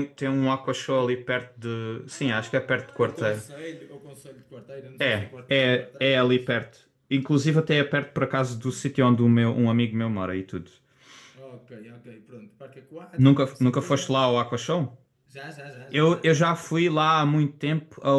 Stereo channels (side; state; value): both; identical; correlation 1.00